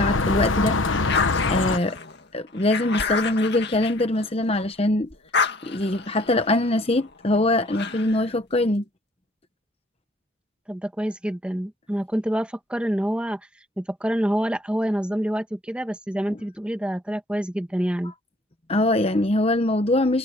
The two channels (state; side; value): normal; both; correlation 0.57